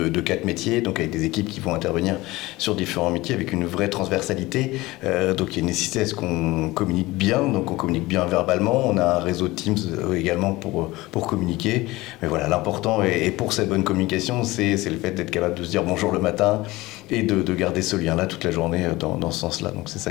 4 métiers, donc avec des équipes qui vont intervenir sur différents métiers avec une vraie transversalité. Donc il y a une nécessité à ce qu'on communique bien, donc on communique bien verbalement. On a un réseau de Teams également pour communiquer. Mais voilà, l'important et pour cette bonne communication, c'est le fait d'être capable de se dire bonjour le matin et de garder ce lien-là toute la journée dans ce sens-là. Donc c'est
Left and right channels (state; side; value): quieter; right; 19.9 dB